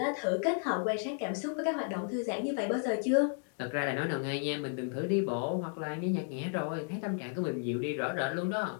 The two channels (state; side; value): silent; right; 56 dB below the other